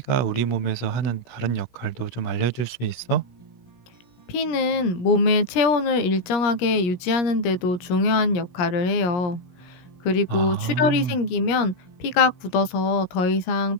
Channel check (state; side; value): late; right; 17 ms